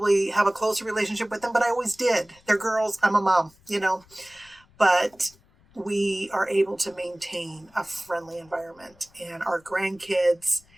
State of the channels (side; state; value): left; noise; rumble, 30 dB below the sound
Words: have a closer relationship with them, but I always did. They're girls. I'm a mom, But we are able to maintain a friendly environment. And our grandkids,